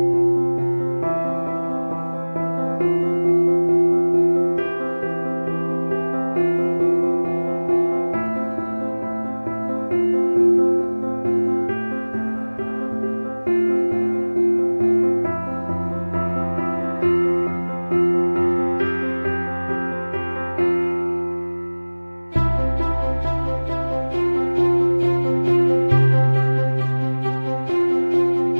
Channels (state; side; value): inverted; both; correlation -1.00